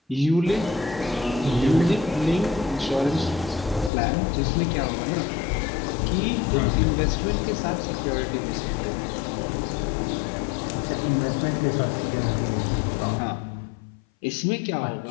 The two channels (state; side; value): drops out; right; at 3.9 s